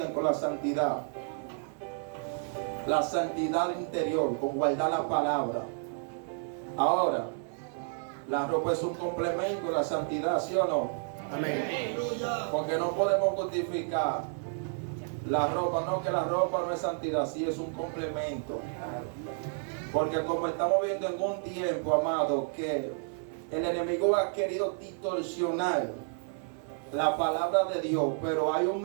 con la santidad. La santidad interior, con guardar la palabra. Ahora, la ropa es un complemento de la santidad, ¿sí o no? Amén. Porque no podemos justificar la ropa, no, que la ropa no es santidad, sí es un complemento. Porque como estamos viendo en un tiempo, amado, que el enemigo ha querido distorsionar la palabra de Dios, pero hay un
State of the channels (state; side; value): silent; left; 57 dB below the other